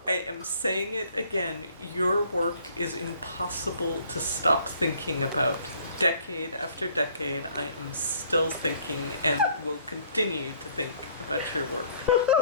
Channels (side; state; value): both; inverted; correlation -0.60